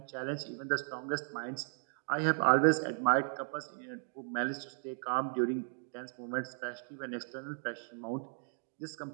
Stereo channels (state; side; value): silent; left; 54 dB below the other